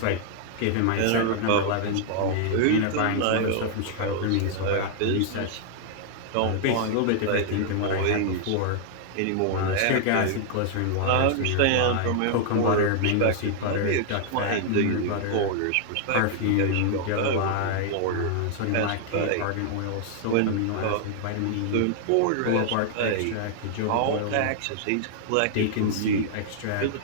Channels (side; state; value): both; different; correlation -0.01